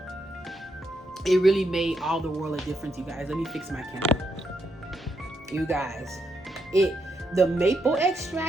it really made all the world of difference, you guys. Let me fix my camera. You guys, the maple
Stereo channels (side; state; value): both; normal; correlation 0.79